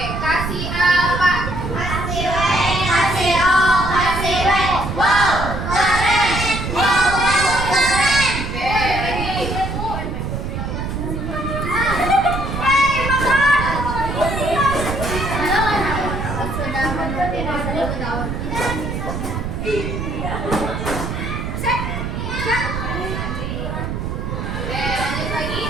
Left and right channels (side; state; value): right; noise; rumble, 4 dB below the sound